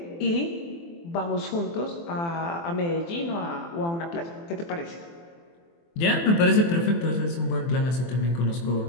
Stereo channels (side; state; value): right; late; 24 ms